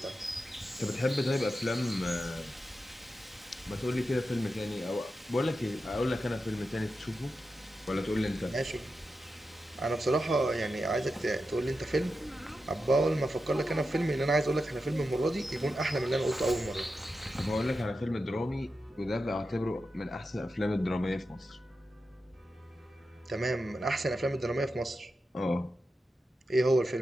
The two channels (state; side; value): normal; both; correlation 0.90